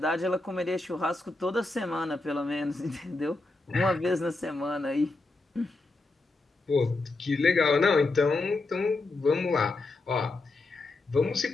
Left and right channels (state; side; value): quieter; right; 3.2 dB